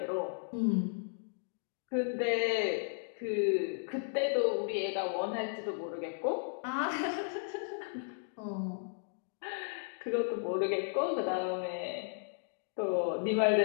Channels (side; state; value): right; silent; digital silence